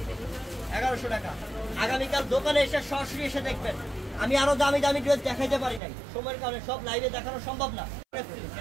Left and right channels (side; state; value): left; drops out; at 5.8 s